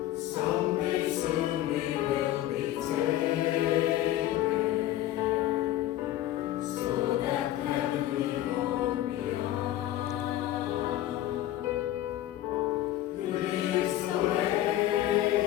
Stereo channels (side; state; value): right; quieter; 13.7 dB